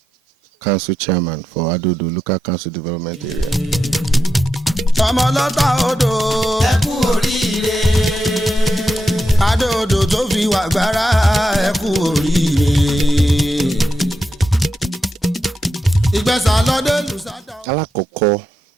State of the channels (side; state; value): both; normal; correlation 0.86